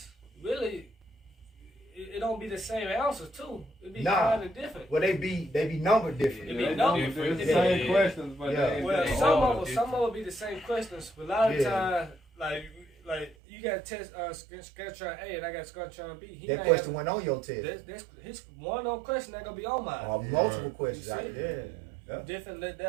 really, it don't be the same answers too. It be kind of different. Well, they be numbered different. It be numbered different. It's the same questions, but well, some of them be the same questions, but a lot of the time, like you got test Scantron A and I got Scantron B. That question went on your test. That's his one on question that gonna be on mine. Or multiple questions out there. Yeah. Different,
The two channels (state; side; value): drops out; left; at 13.4 s